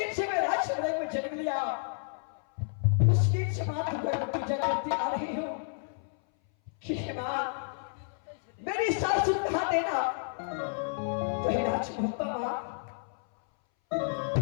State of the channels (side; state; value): right; silent; 57 dB below the other